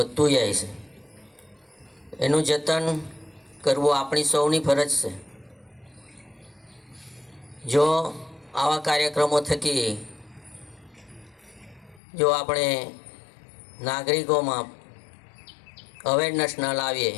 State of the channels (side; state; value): right; drops out; at 12.0 s